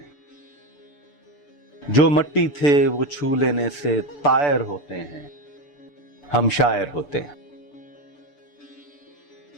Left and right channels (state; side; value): late; right; 6.9 ms